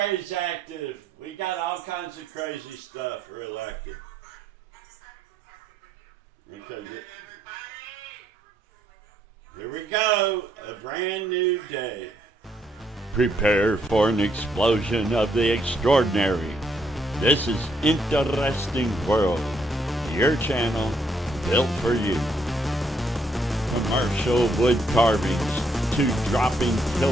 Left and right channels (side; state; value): both; normal; correlation 0.72